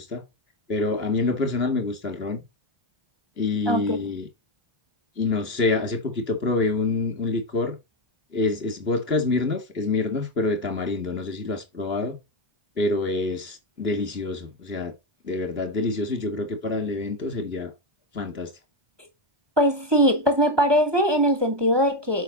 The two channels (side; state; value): left; late; 1.2 ms